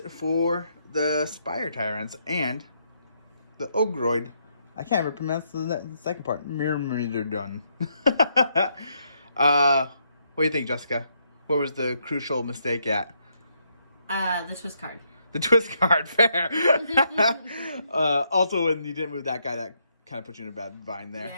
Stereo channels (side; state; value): both; inverted; correlation -0.76